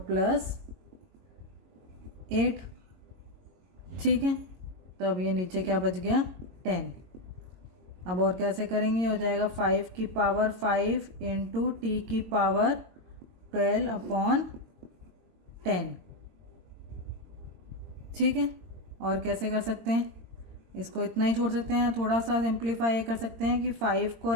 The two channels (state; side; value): late; left; 22 ms